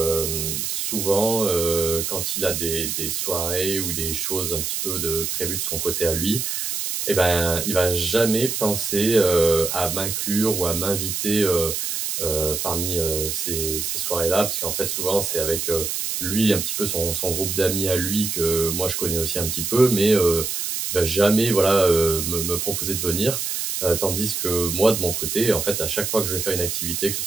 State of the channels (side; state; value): right; noise; hiss, 2 dB below the sound